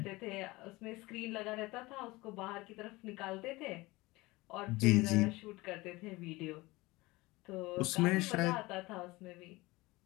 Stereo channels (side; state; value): right; quieter; 21.3 dB